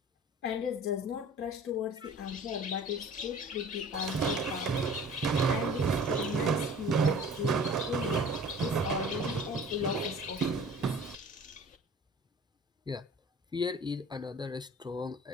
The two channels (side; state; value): both; normal; correlation 0.45